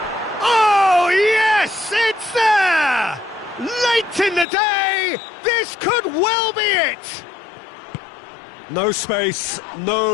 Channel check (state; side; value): drops out; right; at 4.5 s